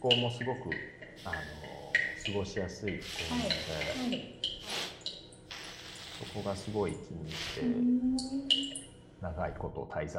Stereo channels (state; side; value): identical; both; correlation 1.00